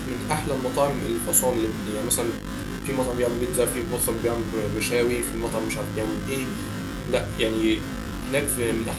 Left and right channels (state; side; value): identical; both; correlation 1.00